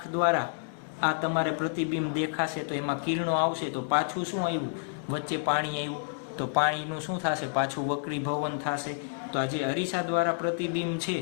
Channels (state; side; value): silent; right; digital silence